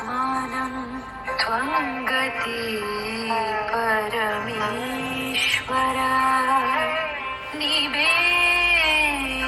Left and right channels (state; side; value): identical; both; correlation 1.00